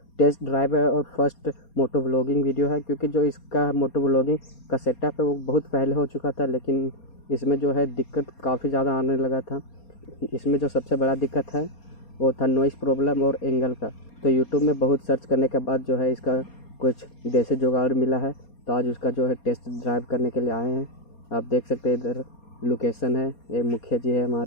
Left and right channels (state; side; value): late; right; 4.3 ms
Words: टेस्ट ड्राइव है और फर्स्ट मोटो व्लॉगिंग वीडियो है। क्योंकि जो इसका मोटो व्लॉगिंग का सेटअप है वो बहुत पहले हो चुका था, लेकिन इसमें जो है दिक्कत काफ़ी ज़्यादा आने लगा था। इसमें जो सबसे बड़ा दिक्कत है वो था नॉइज़ प्रॉब्लम और एंगल का। तो यूट्यूब में बहुत सर्च करने के बाद जो है इसका कुछ देसी जुगाड़ मिला है, तो आज उसका जो है टेस्ट ड्राइव करने के लिए आए हैं। आप देख सकते हैं इधर लोकेशन है, ये मुखिया जी है